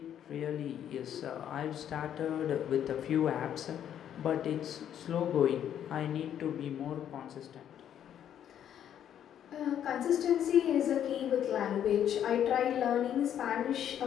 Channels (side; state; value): right; quieter; 9.9 dB